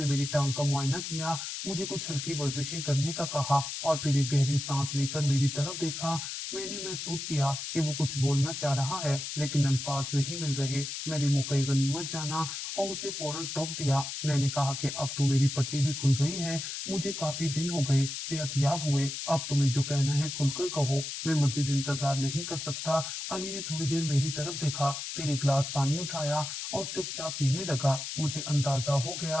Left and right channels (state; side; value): noise; left; hiss, 6 dB below the sound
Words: मेरी टांग का मुआयना किया, मुझे कुछ हल्की वर्जिशें करने का कहा और फिर एक गहरी सांस लेकर मेरी तरफ देखा। मैंने महसूस किया कि वो कुछ बोलना चाह रहा है लेकिन अल्फाज नहीं मिल रहे। मैंने मौके गनीमत जाना और उसे फौरन टोक दिया। मैंने कहा कि अब तो मेरी पट्टी भी खुल गई है, मुझे काफी दिन हो गए सेहतयाब हुए, अब तुम्हें जो कहना है खुलकर कहो, मैं मजीद इंतजार नहीं कर सकता। अली ने थोड़ी देर मेरी तरफ देखा, फिर एक गिलास पानी उठाया और चुपचाप पीने लगा। मुझे अंदाजा हो